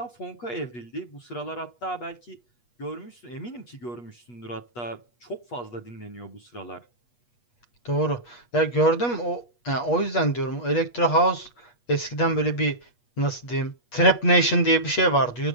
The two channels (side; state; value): right; late; 8.3 ms